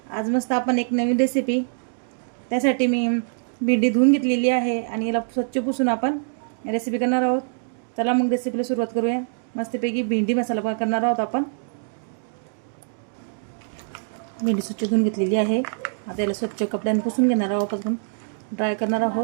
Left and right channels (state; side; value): silent; left; digital silence